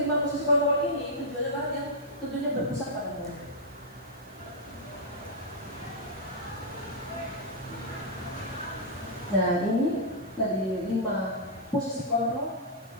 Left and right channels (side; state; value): right; noise; hiss, 26 dB below the sound